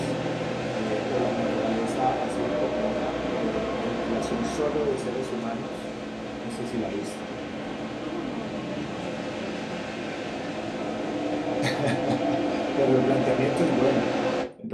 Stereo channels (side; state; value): both; identical; correlation 1.00